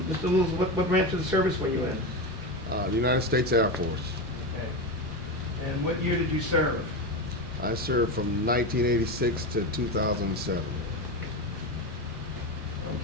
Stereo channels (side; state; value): both; normal; correlation 0.18